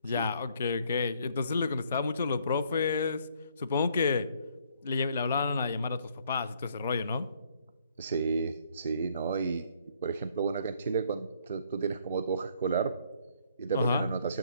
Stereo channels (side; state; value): both; inverted; correlation -0.65